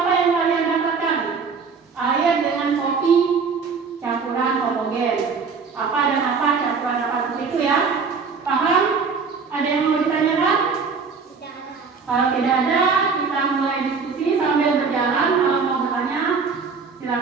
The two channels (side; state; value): left; quieter; 5.2 dB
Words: Kalau tidak ada, kita mulai diskusi sambil berjalan. Kalau mau bertanya,